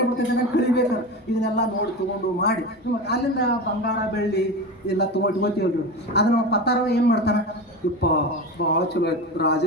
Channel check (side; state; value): both; normal; correlation 0.26